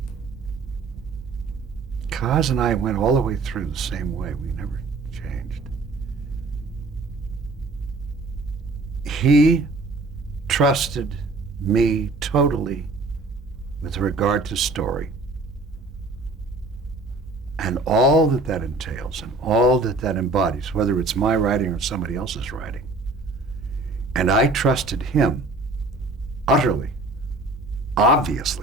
Kaz and I went all the way through the same way. We never changed. He trusted me totally with regard to story and all that that entails and all that that embodies, whether it's my writing or somebody else's writing. And I trusted him utterly,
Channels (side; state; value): left; quieter; 3.3 dB